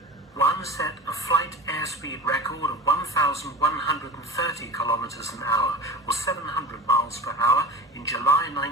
One set a flight airspeed record of 1,130 kilometers an hour, or 700 miles per hour, in July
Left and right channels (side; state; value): both; normal; correlation 0.34